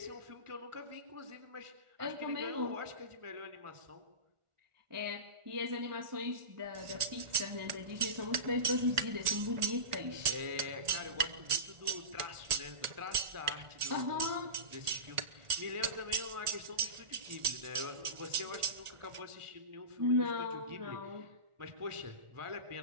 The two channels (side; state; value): left; late; 1.4 ms